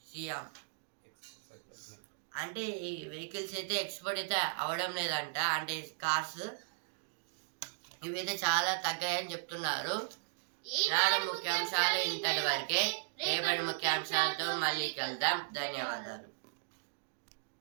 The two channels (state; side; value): silent; left; digital silence